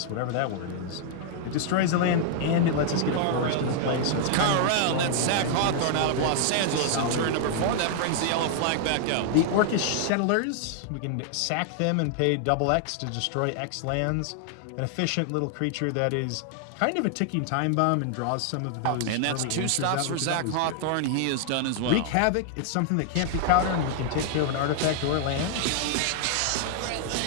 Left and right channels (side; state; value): both; different; correlation 0.00